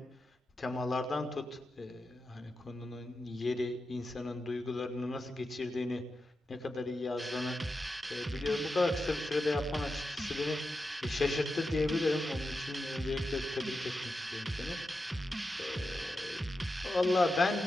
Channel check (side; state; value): both; normal; correlation 0.89